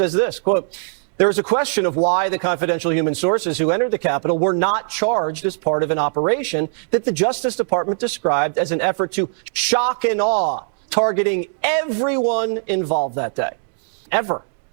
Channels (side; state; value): left; silent; digital silence